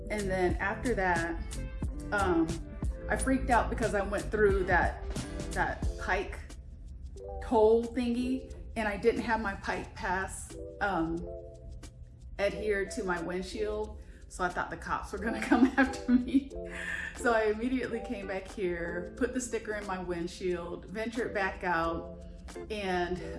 And then after that, I freaked out because I went through that pike toll thingy, and I didn't have my pike pass adhered to my windshield. So I thought the cops were gonna come after me. So I immediately came back here, put the sticker in my windshield, ventured back out. And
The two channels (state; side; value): identical; both; correlation 1.00